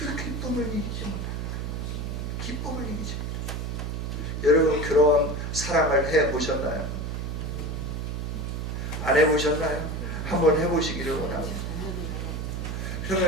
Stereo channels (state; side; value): noise; right; hum, 3 dB below the sound